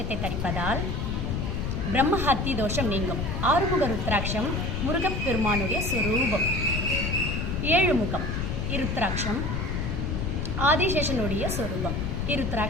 தரிப்பதால் பிரம்மஹத்தி தோஷம் நீங்கும். 6 முக ருத்ராட்சம் முருகப்பெருமானுடைய சொரூபம். 7 முகம் இருத்ராட்சம் ஆதிசேஷனுடைய சொரூபம்.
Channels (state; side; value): noise; left; rumble, 1 dB below the sound